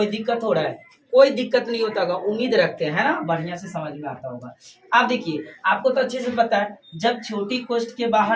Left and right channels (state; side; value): identical; both; correlation 1.00